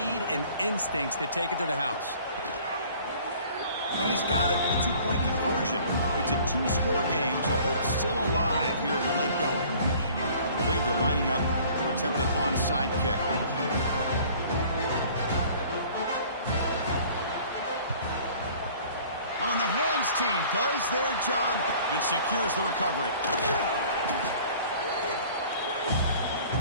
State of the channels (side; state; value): both; inverted; correlation -0.51